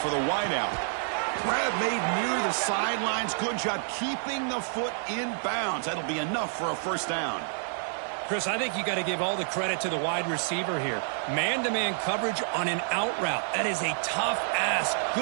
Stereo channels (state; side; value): silent; left; digital silence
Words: for the wideout. Grab made near the sidelines. Good job keeping the foot in bounds. That'll be enough for a first down. Chris, I think you got to give all the credit to the wide receiver here. Man-to-man coverage on an out route. That is a tough ask.